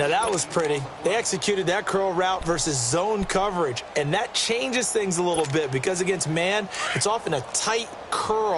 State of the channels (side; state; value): both; identical; correlation 1.00